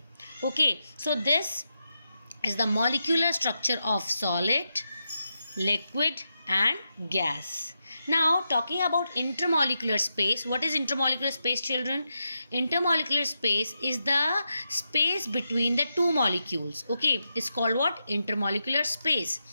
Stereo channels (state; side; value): inverted; both; correlation -0.87